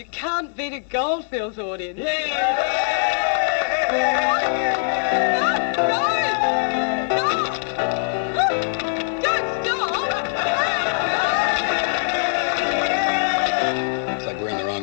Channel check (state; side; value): silent; right; 64 dB below the other